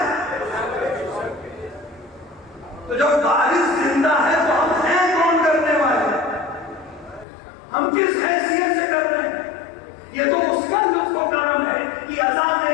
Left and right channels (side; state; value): right; drops out; at 7.2 s